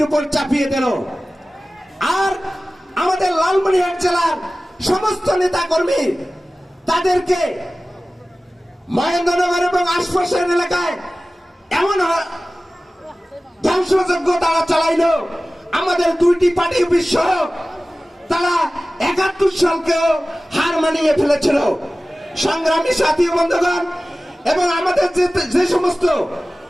উপর চাপিয়ে দিল। আর আমাদের লালমনিরহাট জেলার সমস্ত নেতা কর্মী তাদেরকে মহেন্দ্রনগর এবং আশপাশের এলাকায় এমন ধ্বংসযজ্ঞ তারা চালাইল, আমাদের দুইটি পার্টি অফিস সহ তারা ৭১ সালকেও হার মানিয়ে ফেলেছিল। সংগ্রামী সাথী বন্ধুগণ, এবং আমাদের যে সমস্ত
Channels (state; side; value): normal; both; correlation 0.97